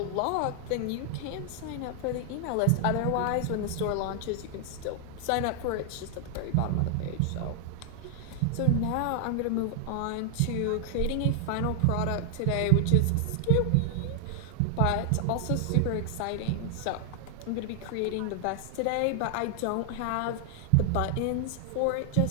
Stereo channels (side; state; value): both; different; correlation 0.00